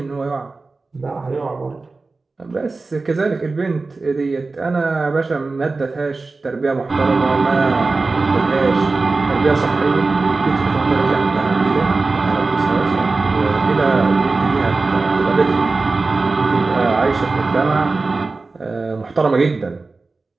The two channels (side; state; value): left; quieter; 3.7 dB